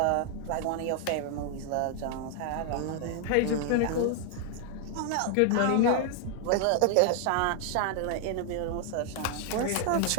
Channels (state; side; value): different; both; correlation 0.00